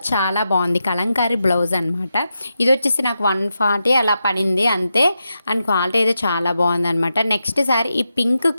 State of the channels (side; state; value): both; inverted; correlation -0.88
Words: చాలా బాగుంది. కలంకారీ బ్లౌజ్ అనమాట. ఇది వచ్చేసి నాకు 140 అలా పడింది అంతే. అండ్ క్వాలిటీ అయితే చాలా బాగుందనమాట. నెక్స్ట్ శారీ ఈ పింక్